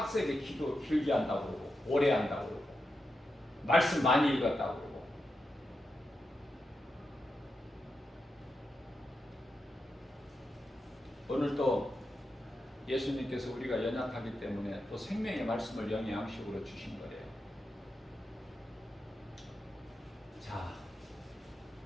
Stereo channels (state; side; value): normal; both; correlation 0.88